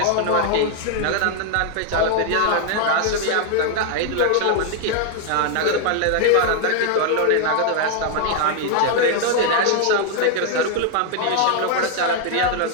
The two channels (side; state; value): both; different; correlation 0.00